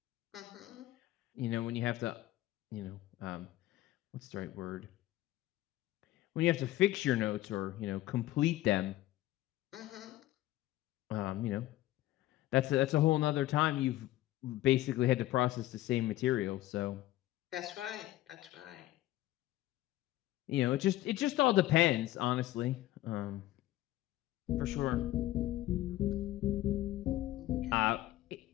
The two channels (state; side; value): quieter; right; 15.6 dB